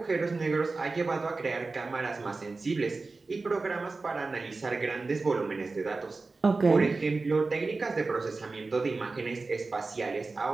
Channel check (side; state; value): left; quieter; 3.8 dB